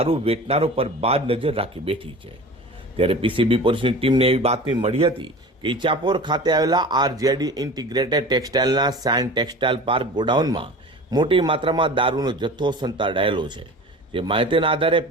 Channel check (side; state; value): both; normal; correlation 0.37